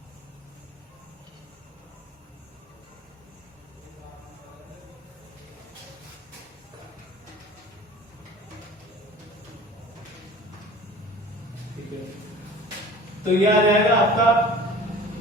ठीक है, तो ये आ जाएगा आपका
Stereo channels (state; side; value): normal; both; correlation 0.43